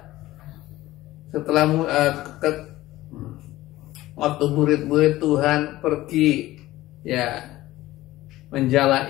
setelah waktu murid-murid Tuhan pergi, ya,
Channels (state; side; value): quieter; right; 16.6 dB